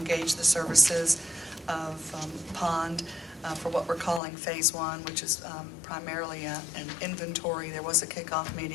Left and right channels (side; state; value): right; drops out; at 4.2 s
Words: the services of Pond for what we're calling Phase 1, which is primarily an inventory. There was a kickoff